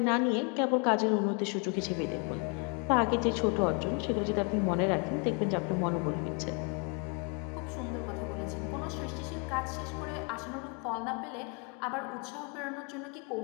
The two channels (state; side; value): quieter; right; 35.8 dB